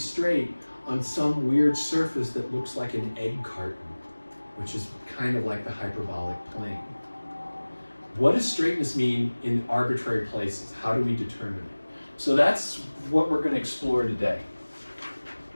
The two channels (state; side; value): inverted; both; correlation -1.00